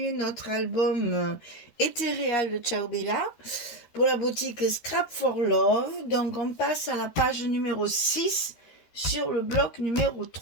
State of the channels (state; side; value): late; right; 13 ms